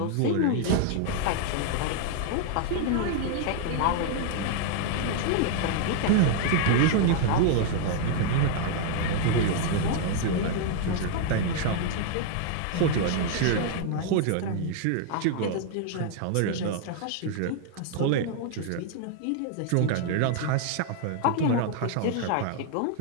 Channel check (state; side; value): different; both; correlation 0.00